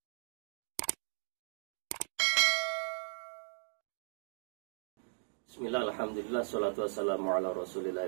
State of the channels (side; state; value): left; silent; digital silence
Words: Bismillah, alhamdulillah, salatu wassalamu ala